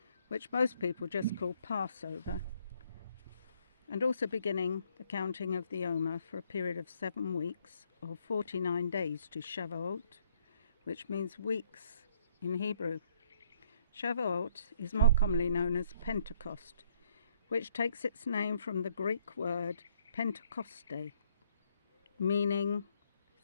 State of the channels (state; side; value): inverted; both; correlation -0.67